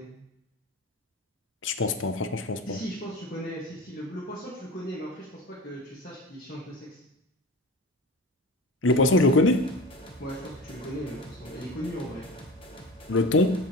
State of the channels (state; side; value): normal; both; correlation 0.33